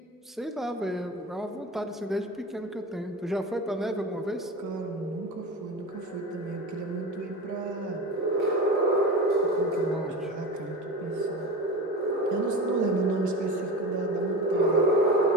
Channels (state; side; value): normal; both; correlation 0.28